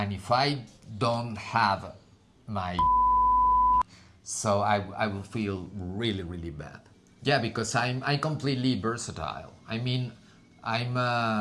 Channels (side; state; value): both; identical; correlation 1.00